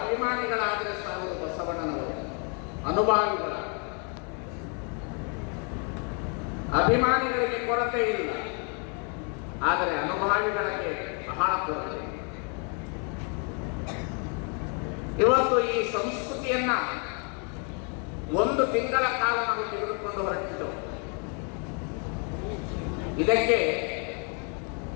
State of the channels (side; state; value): right; quieter; 38.4 dB